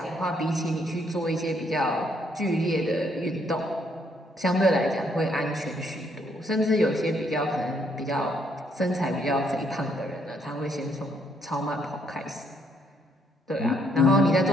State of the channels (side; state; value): both; normal; correlation 0.70